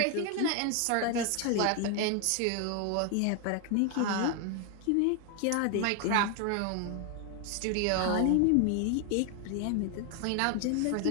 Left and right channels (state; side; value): different; both; correlation 0.01